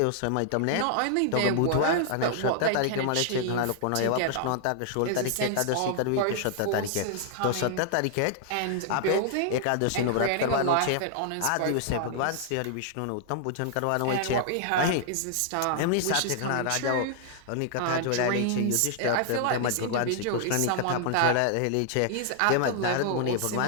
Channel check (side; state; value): both; different; correlation 0.00